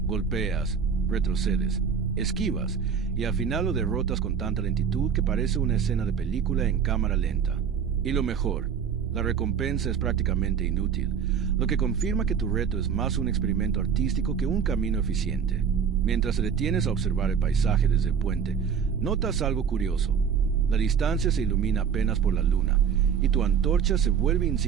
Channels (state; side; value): quieter; left; 7.1 dB